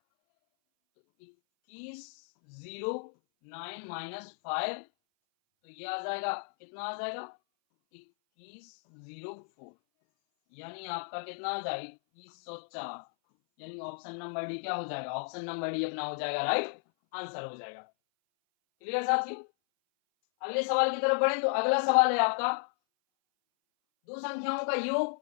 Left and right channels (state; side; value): silent; right; 56 dB below the other